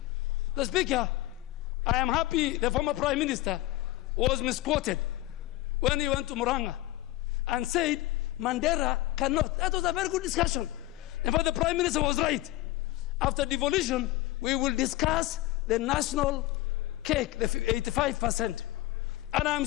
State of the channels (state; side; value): quieter; right; 17.1 dB